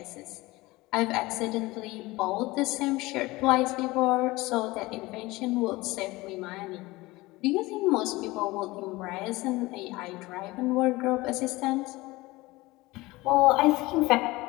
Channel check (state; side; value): quieter; right; 20.7 dB